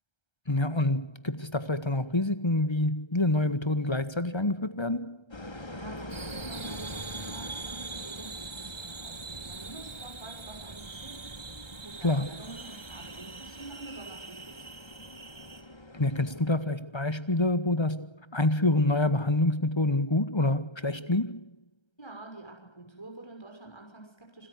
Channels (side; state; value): right; late; 1.3 ms